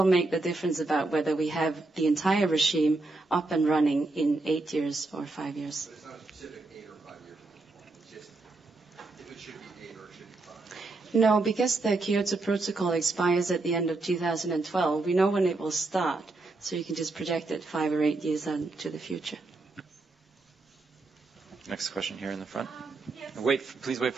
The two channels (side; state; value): left; quieter; 3.3 dB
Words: make the difference about whether we have the entire regime up and running in 8 years or 5 years. But it's not a specific 8 or 5 years. It's just if it should be 8 or it should be 5. No, because the Kyoto Protocol expires at the end of 2012, we know when it will start. So you can just project it 5 or 8 years into the future. Next question here in the front. Yes. Please wait